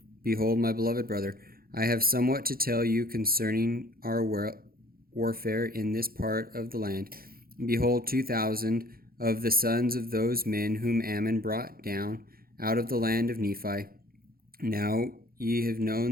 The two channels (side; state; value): left; late; 0.43 ms